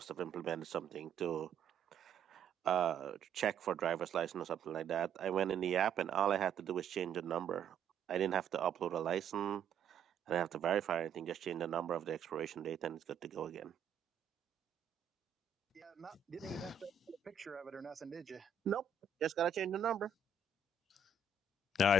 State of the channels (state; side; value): quieter; left; 6.0 dB